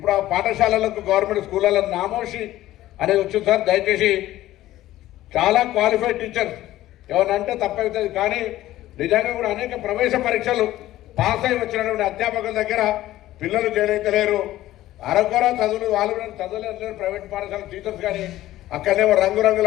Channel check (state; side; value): quieter; right; 14.9 dB